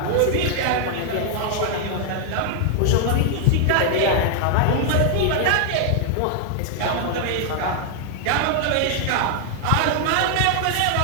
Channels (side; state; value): both; different; correlation -0.01